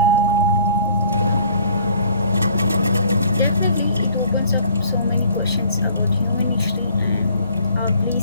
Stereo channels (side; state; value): both; inverted; correlation -0.56